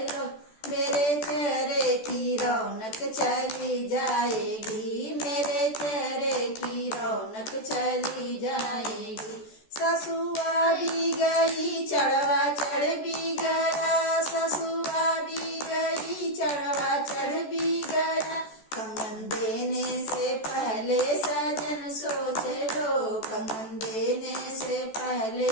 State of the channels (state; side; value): late; right; 14 ms